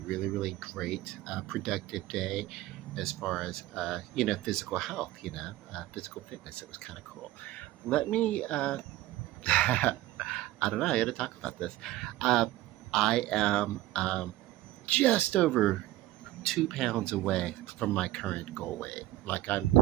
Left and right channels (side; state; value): left; quieter; 16.3 dB